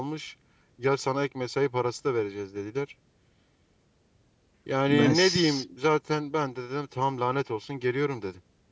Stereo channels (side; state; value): both; identical; correlation 1.00